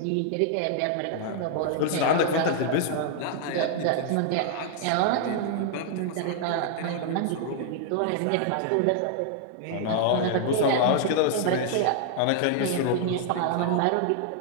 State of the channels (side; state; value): both; different; correlation 0.00